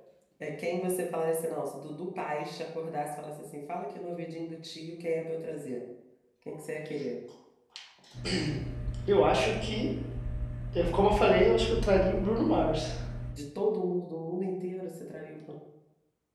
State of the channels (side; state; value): both; identical; correlation 1.00